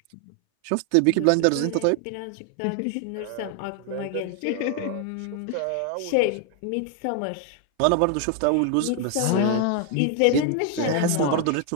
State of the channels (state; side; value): different; both; correlation 0.00